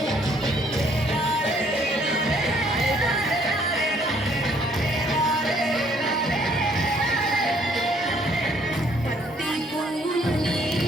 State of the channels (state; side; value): normal; both; correlation 0.64